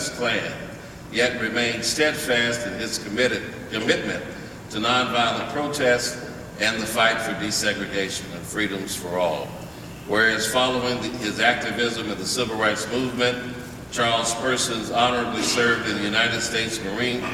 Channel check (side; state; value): both; identical; correlation 1.00